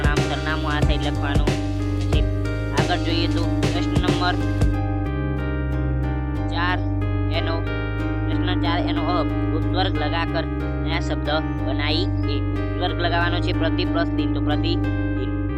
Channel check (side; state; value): both; identical; correlation 1.00